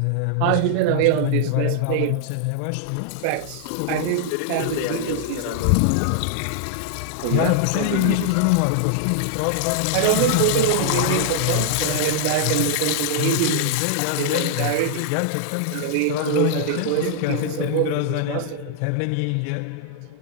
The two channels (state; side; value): different; both; correlation -0.01